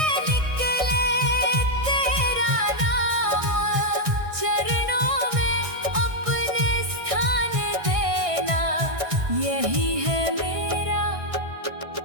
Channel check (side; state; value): left; late; 1.6 ms